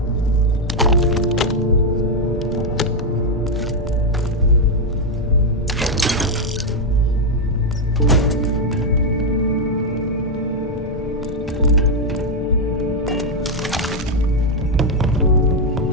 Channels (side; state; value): both; normal; correlation 0.02